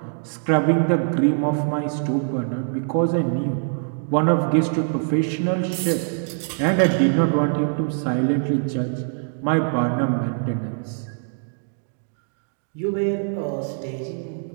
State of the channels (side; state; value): left; silent; digital silence